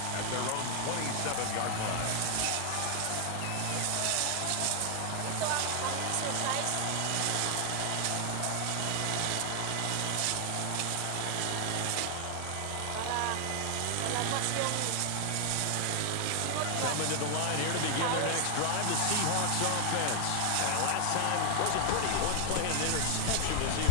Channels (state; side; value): different; both; correlation 0.00